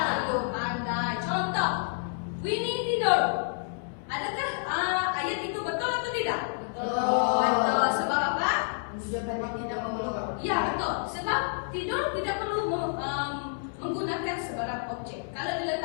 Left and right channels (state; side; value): silent; right; 59 dB below the other